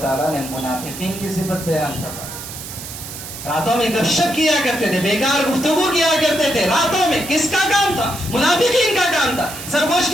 تعالیٰ نے منافقین کی صفت بیان کرا. راتوں میں گپ شپ کیا کرتے تھے، بیکار گفتگو کیا کرتے تھے راتوں میں. کس کا کام تھا؟ منافقین کا کام تھا. سرگوش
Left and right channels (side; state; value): right; noise; hiss, 11 dB below the sound